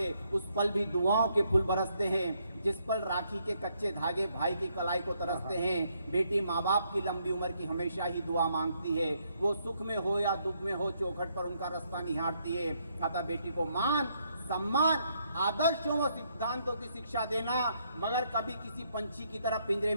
उस पल भी दुआओं के फूल बरसते हैं, जिस पल राखी के कच्चे धागे भाई की कलाई को तरसते हैं। बेटी माँ बाप की लंबी उम्र की हमेशा ही दुआ मांगती है। वो सुख में हो या दुख में हो, चौखट पर उनका रास्ता निहारती है। अतः बेटी को मान, सम्मान, आदर्शों व सिद्धांतों की शिक्षा देना, मगर कभी किसी पंछी की तरह पिंजरे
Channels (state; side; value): inverted; both; correlation -0.73